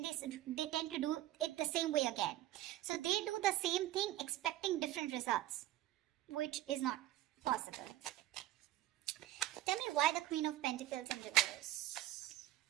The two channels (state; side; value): quieter; left; 14.9 dB